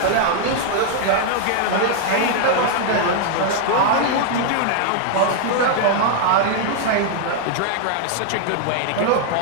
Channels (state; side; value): different; both; correlation 0.00